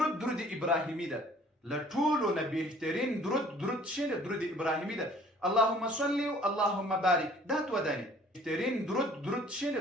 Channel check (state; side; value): normal; both; correlation 0.54